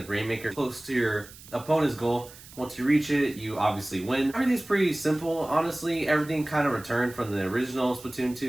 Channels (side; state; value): right; noise; hiss, 19 dB below the sound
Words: Rainmaker close to your opponent's goal. Once you reach it, you obviously win. Everything's pretty simple, honestly. Everything kind of returned from the original Splatoon